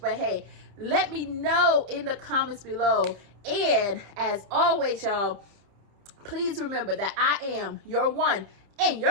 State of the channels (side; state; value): left; late; 30 ms